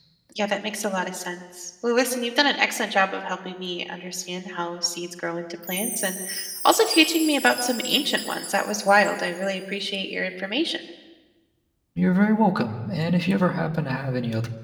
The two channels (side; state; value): both; identical; correlation 1.00